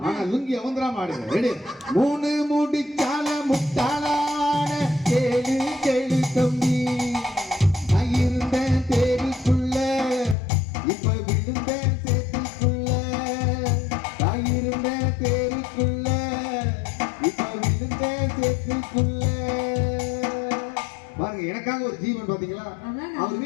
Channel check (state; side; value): drops out; right; at 10.4 s